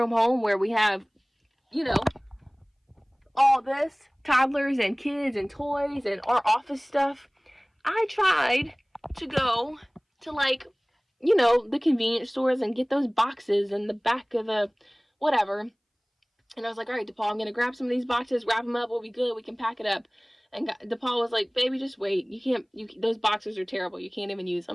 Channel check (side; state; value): both; identical; correlation 1.00